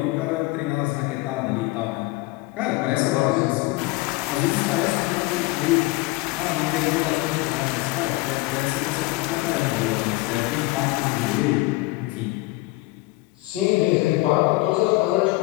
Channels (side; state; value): right; quieter; 20.9 dB